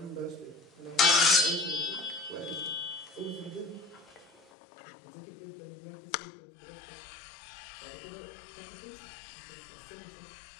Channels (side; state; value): right; drops out; at 4.5 s